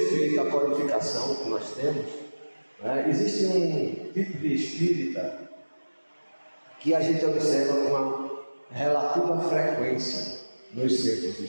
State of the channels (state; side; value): inverted; both; correlation -1.00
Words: à qualificação que nós temos, existe um tipo de espírita que a gente observa com uma relativa frequência nos centros